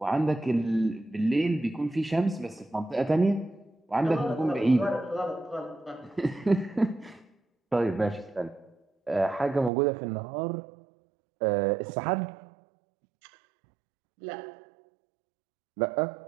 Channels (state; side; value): drops out; left; at 9.7 s